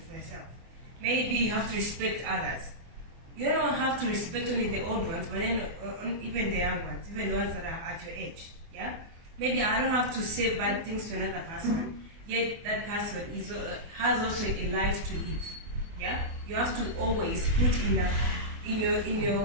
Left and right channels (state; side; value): late; left; 24 ms